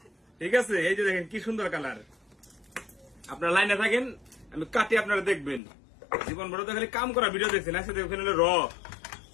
ঠিক আছে? এই যে দেখেন কি সুন্দর কালার। আপনার লাইনে থাকেন, আমি কাটি, আপনারা দেখবেন। জীবন বড় তো খালি কাম করা ভিডিও দেখছেন, একসাথে ওখানে হলো র।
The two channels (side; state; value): right; drops out; at 5.6 s